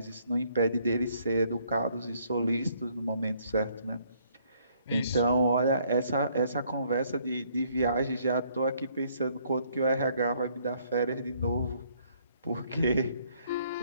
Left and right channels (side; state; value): both; inverted; correlation -0.66